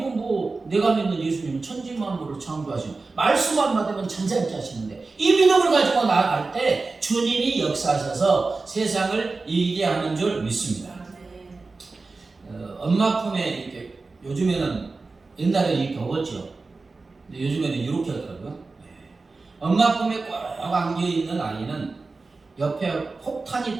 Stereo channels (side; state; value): left; quieter; 3.8 dB